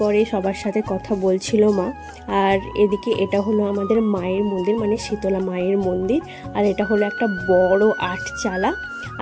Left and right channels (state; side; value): identical; both; correlation 1.00